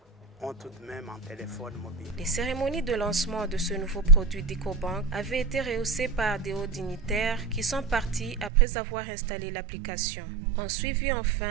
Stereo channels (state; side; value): drops out; left; at 8.5 s